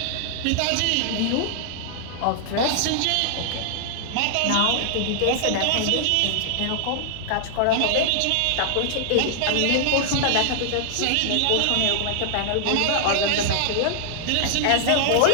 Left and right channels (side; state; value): both; different; correlation -0.01